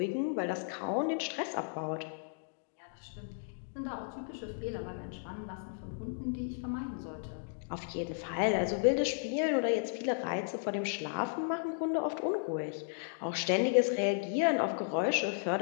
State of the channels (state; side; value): silent; right; digital silence